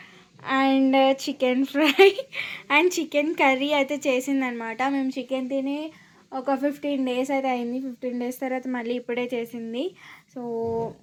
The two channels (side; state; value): both; identical; correlation 1.00